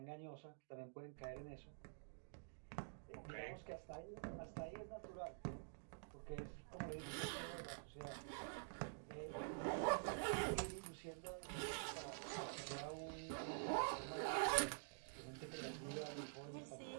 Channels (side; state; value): left; silent; digital silence